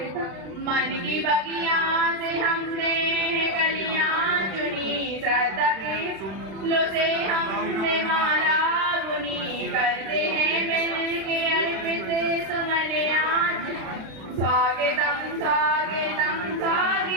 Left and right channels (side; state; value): left; late; 36 ms